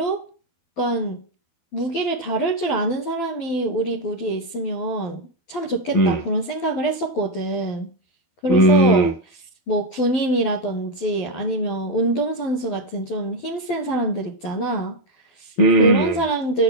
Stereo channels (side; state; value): right; late; 12 ms